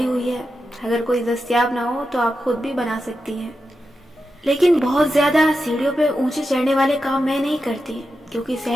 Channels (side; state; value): both; normal; correlation 0.89